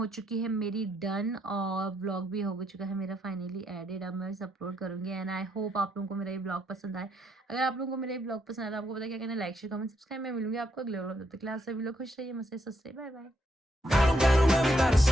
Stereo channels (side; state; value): both; normal; correlation 0.76